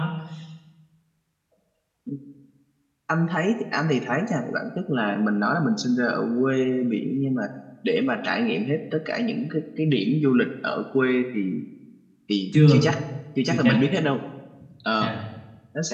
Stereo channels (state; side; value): identical; both; correlation 1.00